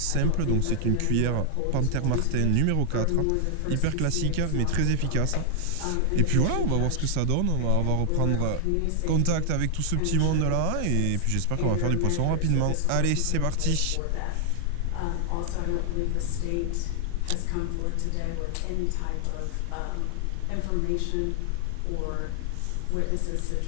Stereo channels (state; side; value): different; both; correlation 0.00